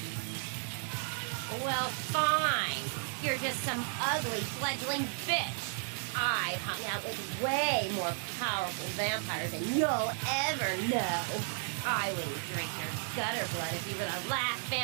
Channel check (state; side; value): silent; left; 55 dB below the other